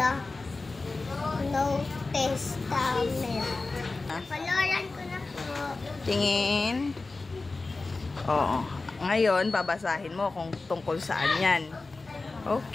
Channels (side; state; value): right; quieter; 3.5 dB